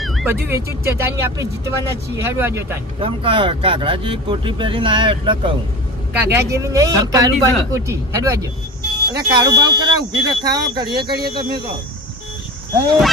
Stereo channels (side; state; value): both; normal; correlation 0.33